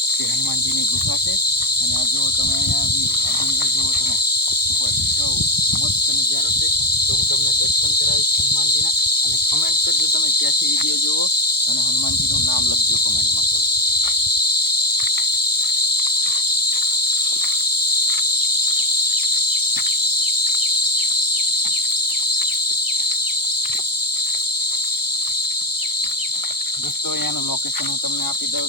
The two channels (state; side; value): late; right; 0.95 ms